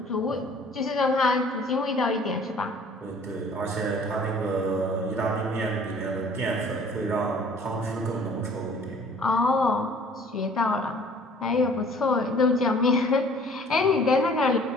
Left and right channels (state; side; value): normal; both; correlation 0.53